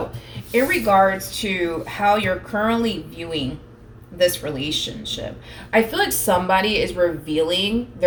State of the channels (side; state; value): both; identical; correlation 1.00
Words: in regards to how you're currently viewing this relationship, I feel like somebody is revealing